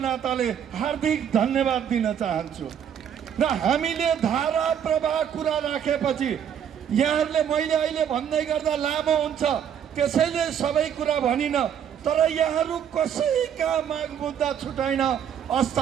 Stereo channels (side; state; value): left; quieter; 8.7 dB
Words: हार्दिक धन्यवाद दिन चाहन्छु। र हामीले धारा प्रवाह कुरा राखेपछि यहाँहरूले मैले अहिले भन्दै गर्दा लामो हुन्छ, त्यसैले सबै कुरा भनिन, तर यहाँहरू कसैका माग मुद्दा छुटाइन।